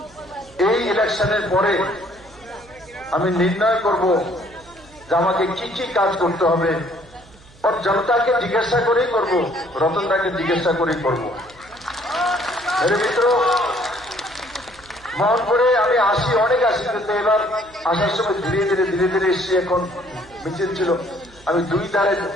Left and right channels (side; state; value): right; noise; hum, 25 dB below the sound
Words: এই ইলেকশনের পরে আমি নির্ণয় করব যে আমাকে কি কি কাজ করতে হবে, আর জনতাকে জিজ্ঞাসা করেই করব, রতনদাকে জিজ্ঞাসা করেই করব। মেরে মিত্র, মোহনপুরে আমি অনেক আসি, কিন্তু এবার আসার সময় ধীরে ধীরে এসছি। এখন মিছিল ছিল, আমি 2 ধারে